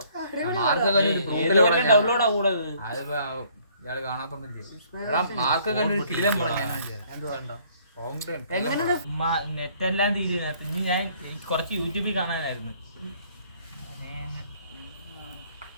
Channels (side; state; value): both; inverted; correlation -0.61